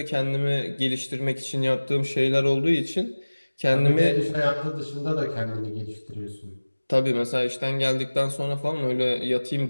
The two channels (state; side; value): inverted; both; correlation -1.00